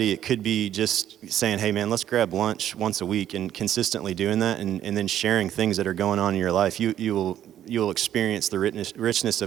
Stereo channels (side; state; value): left; quieter; 11.1 dB